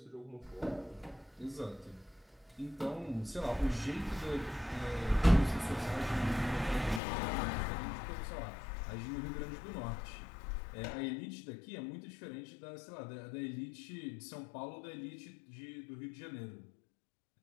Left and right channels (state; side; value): drops out; right; at 7.0 s